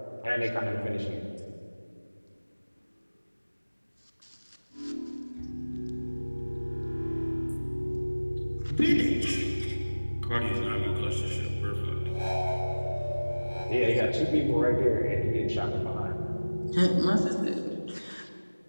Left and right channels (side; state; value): both; inverted; correlation -1.00